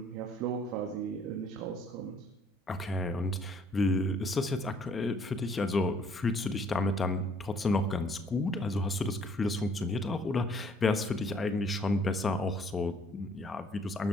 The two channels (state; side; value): normal; both; correlation 0.61